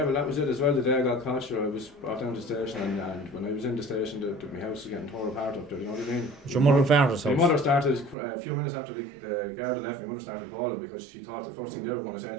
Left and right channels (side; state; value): left; drops out; at 8.2 s